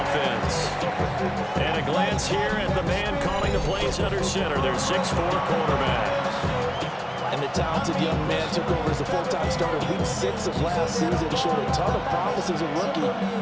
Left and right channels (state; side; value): identical; both; correlation 1.00